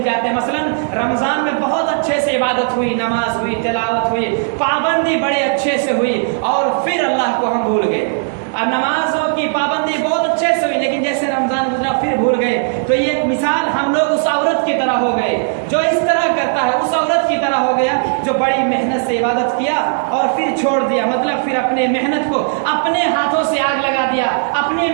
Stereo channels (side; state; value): left; silent; digital silence